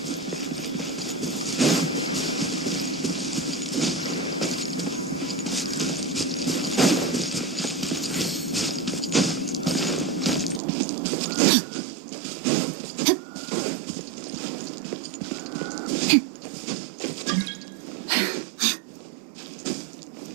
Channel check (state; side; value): drops out; left; at 10.6 s